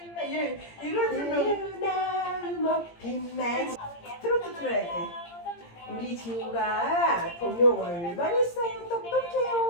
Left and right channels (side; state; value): right; late; 17 ms